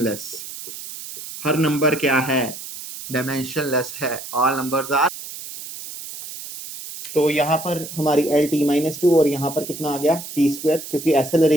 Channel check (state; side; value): noise; right; hiss, 11 dB below the sound